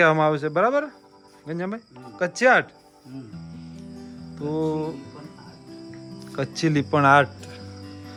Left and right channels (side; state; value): both; identical; correlation 1.00